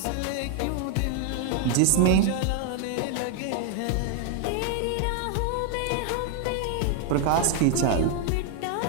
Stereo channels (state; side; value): different; both; correlation 0.00